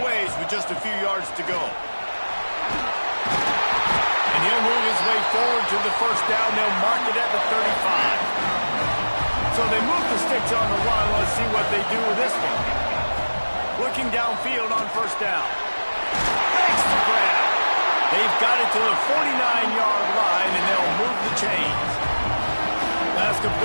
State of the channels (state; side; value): inverted; both; correlation -1.00